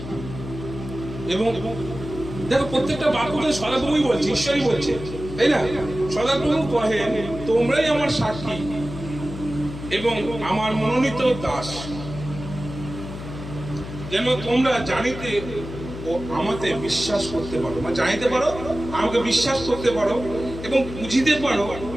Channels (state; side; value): noise; left; hum, 10 dB below the sound